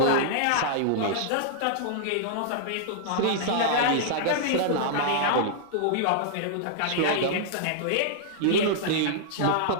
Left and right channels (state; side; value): different; both; correlation -0.01